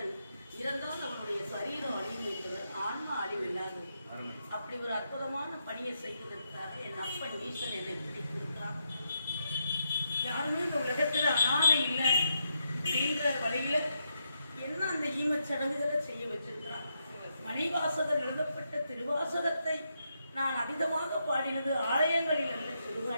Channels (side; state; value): both; inverted; correlation -0.81